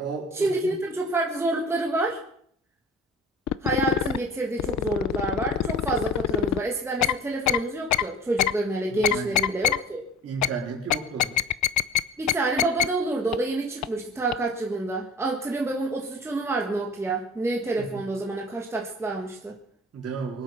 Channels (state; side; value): normal; both; correlation 0.42